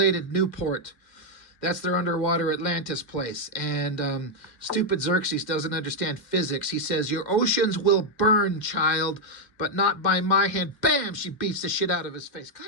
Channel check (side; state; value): right; late; 2.1 ms